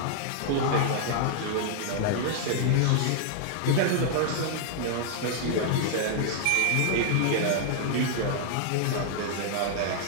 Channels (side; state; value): both; different; correlation -0.01